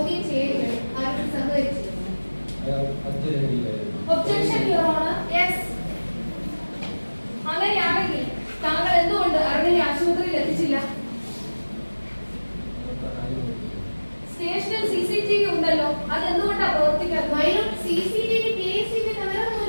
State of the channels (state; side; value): inverted; both; correlation -1.00